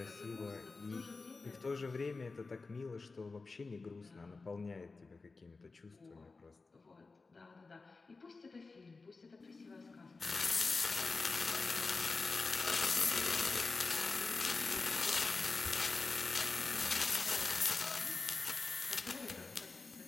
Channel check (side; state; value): right; quieter; 4.0 dB